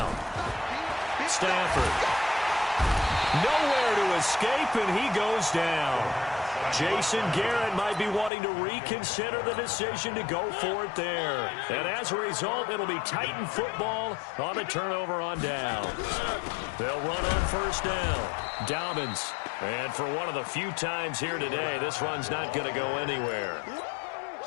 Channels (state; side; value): drops out; right; at 8.3 s